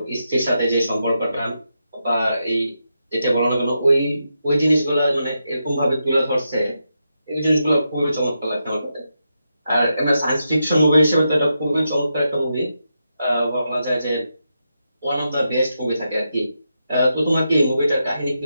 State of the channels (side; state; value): both; inverted; correlation -0.85